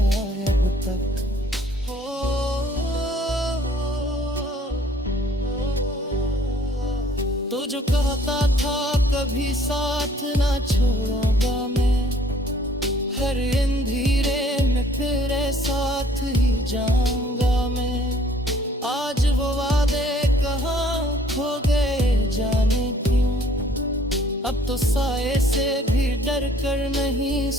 तक। तो जो कहता था कभी साथ ना छोड़ूंगा मैं, हर अंधेरे में तेरे साथ ही जाऊंगा मैं। आज वो वादे कहाँ खो गए जाने क्यों, अब तो साए से भी डर कर नहीं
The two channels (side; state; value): both; normal; correlation 0.58